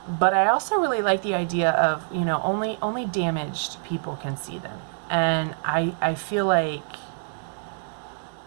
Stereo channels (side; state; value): left; silent; digital silence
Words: I also really like the idea of, only damaged people can see them. And I feel like